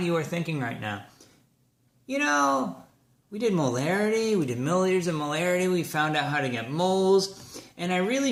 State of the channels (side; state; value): both; identical; correlation 1.00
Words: you are thinking right now. You know, we did molarity, we did milliliters of molarity, we found out how to get moles, and I really